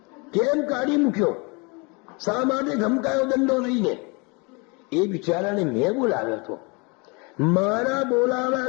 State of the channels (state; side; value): quieter; right; 29.9 dB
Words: કેમ કાઢી મૂક્યો, શા માટે ધમકાયો દંડો લઈને. એ બિચારાને મેં બોલાવ્યો હતો, મારા